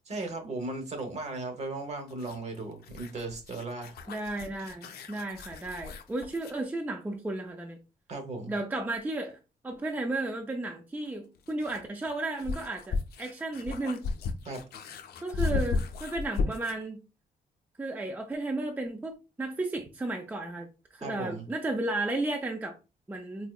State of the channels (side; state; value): both; normal; correlation 0.69